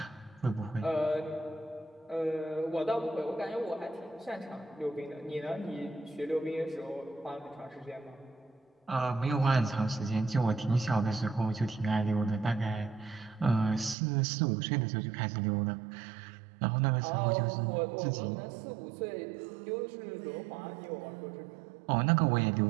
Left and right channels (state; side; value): drops out; left; at 14.0 s